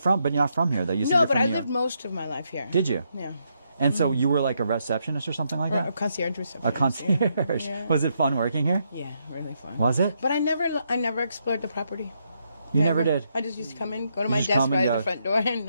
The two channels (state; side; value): inverted; both; correlation -0.78